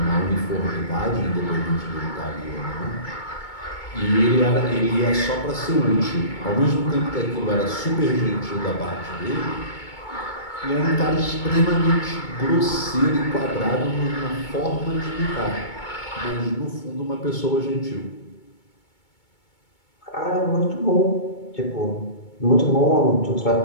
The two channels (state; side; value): late; right; 2.2 ms